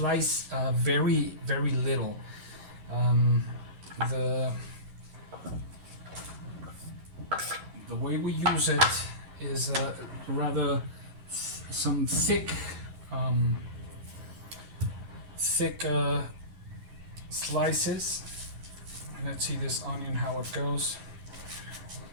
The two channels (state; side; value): late; left; 11 ms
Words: very little. The way we use it is rather some thick slices. Let's see this onion, how it goes.